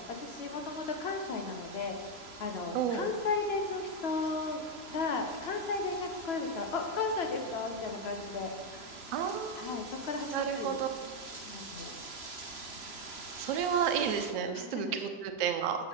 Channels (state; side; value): late; right; 3.0 ms